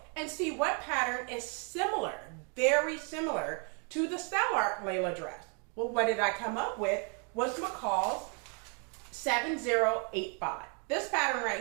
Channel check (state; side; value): quieter; left; 37.8 dB